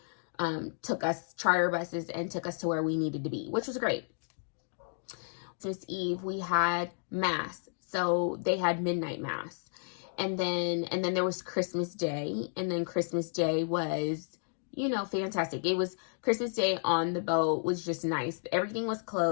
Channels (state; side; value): silent; right; digital silence